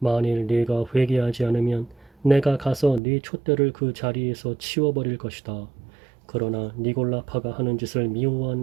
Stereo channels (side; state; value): left; drops out; at 3.0 s